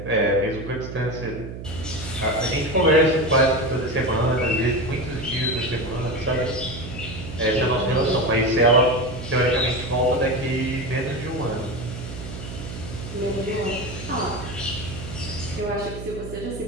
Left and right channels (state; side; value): noise; right; hum, 10 dB below the sound